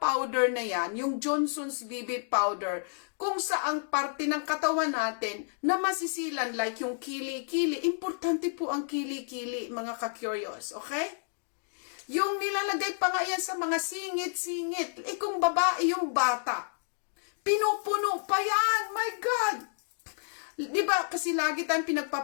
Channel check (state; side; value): silent; right; digital silence